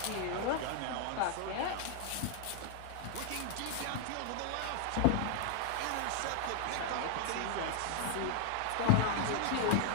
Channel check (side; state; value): both; different; correlation 0.00